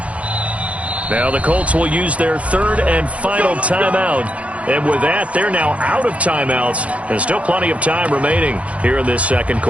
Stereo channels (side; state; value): left; late; 0.064 ms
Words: Now the Colts will use their third and final timeout. And with that, they're now out of timeouts. And still plenty of time remaining here in this second